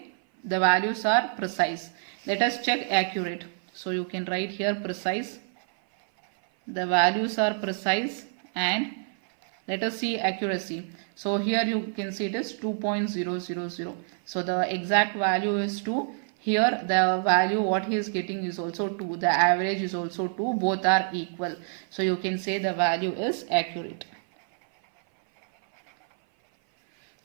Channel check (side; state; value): left; silent; 57 dB below the other